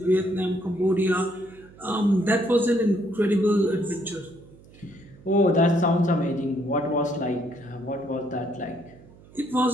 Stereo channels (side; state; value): right; noise; hum, 23 dB below the sound